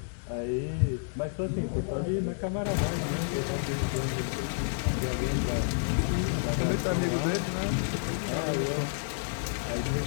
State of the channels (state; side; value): silent; right; digital silence